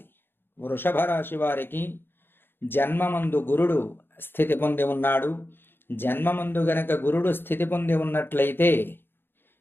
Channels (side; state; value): right; late; 0.10 ms